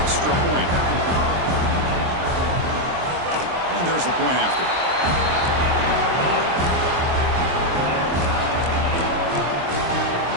point. And there's the point after.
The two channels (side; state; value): left; late; 23 ms